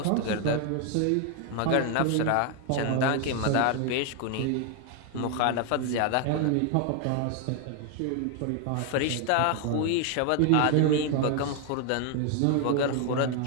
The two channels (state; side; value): different; both; correlation 0.01